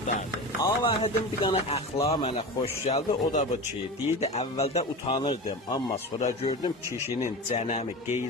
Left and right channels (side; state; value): both; normal; correlation 0.28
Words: Avahidin bir dana əxlaqı mənə xoş gəldi, o da bu ki, deyirdi əvvəldə utanırdım, amma sonra gördüm kişinin cənəmi,